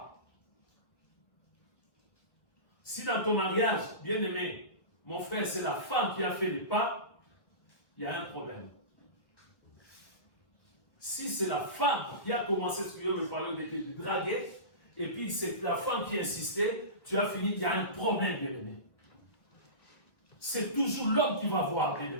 Si dans ton mariage, bien-aimé, mon frère, c'est la femme qui a fait les pas, il y a un problème. Si c'est la femme qui a commencé, ce que je veux parler de draguer, et puis c'est la femme qui insistait, tu as fini, il y a un problème, bien-aimé. C'est toujours l'homme qui va voir,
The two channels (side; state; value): right; late; 1.8 ms